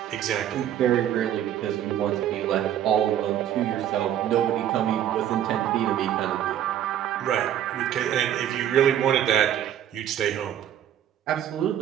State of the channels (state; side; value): quieter; left; 10.8 dB